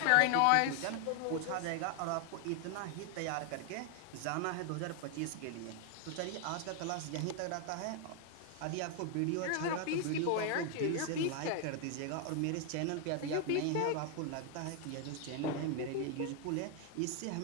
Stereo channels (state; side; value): different; both; correlation 0.00